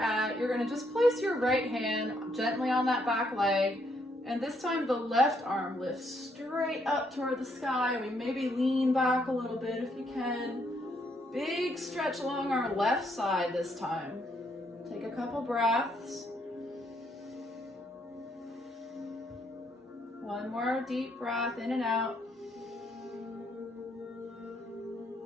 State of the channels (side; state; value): both; normal; correlation 0.73